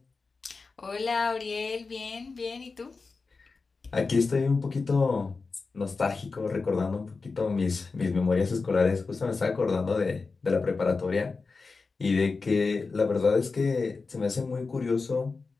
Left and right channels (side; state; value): right; quieter; 4.3 dB